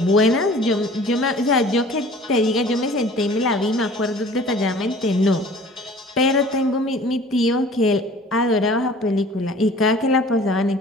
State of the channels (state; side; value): normal; both; correlation 0.47